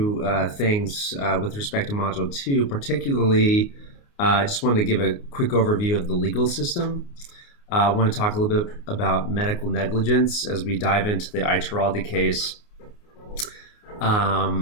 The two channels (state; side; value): late; right; 29 ms